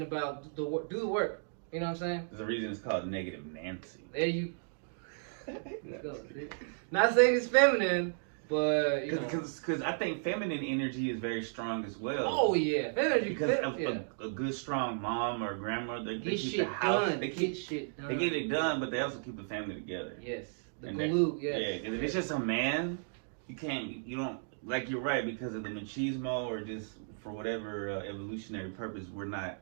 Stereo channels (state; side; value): silent; left; digital silence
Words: about do the work. You know what I'm saying? There's a reason it's called negative Nancy. There you go. Not saying it's feminine, but Because I think feminine energy is very strong as well. Oh yeah, feminine. Because a good strong mom or grandmother, they Get keep shit the house. done. They Get shit done. They get it done, but they also keep the family together. Yes, the And glue. Yes. Yeah, because if it's just a man, you don't like you're right because of the machismo or just for whatever evolutionary purpose we're not.